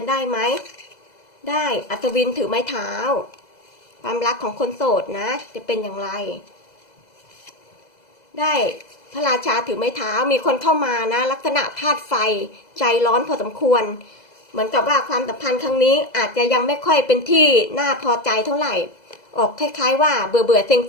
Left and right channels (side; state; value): right; late; 2.0 ms